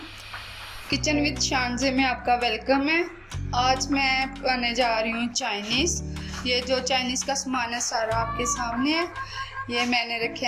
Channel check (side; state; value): both; identical; correlation 1.00